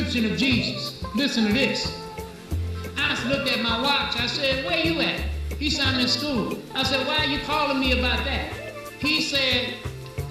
of Jesus? Listen to this. I looked at my watch. I said, where you at? He said, I'm in school. I said, why are you calling me about that? He said,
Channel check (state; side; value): identical; both; correlation 1.00